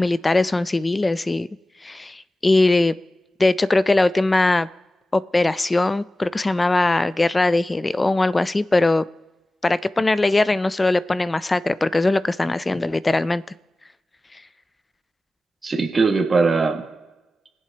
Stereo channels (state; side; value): normal; both; correlation 0.96